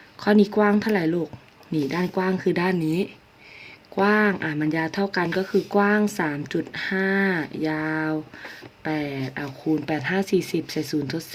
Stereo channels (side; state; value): both; identical; correlation 1.00